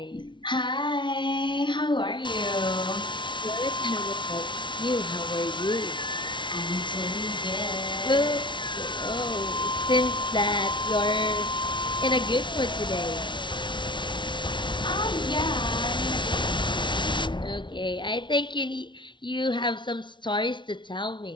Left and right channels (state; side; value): late; right; 0.23 ms